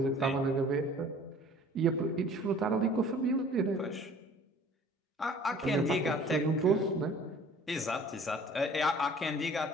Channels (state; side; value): normal; both; correlation 0.50